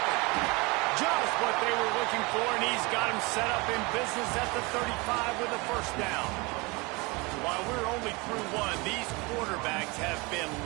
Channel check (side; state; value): left; quieter; 26.1 dB